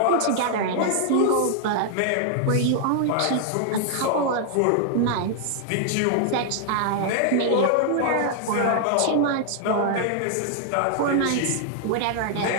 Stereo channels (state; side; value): different; both; correlation 0.00